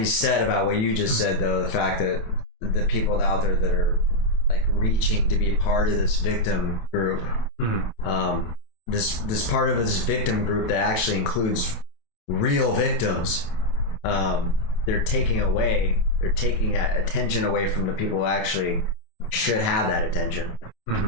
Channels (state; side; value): late; right; 27 ms